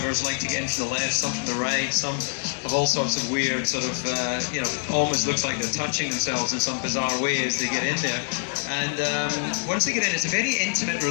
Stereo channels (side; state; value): right; silent; digital silence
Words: like to get into the left, some from the right, some have all sorts of weird sort of, almost looks like they're touching themselves in some bizarre way as they get in there. And once they get in, it's a very intimate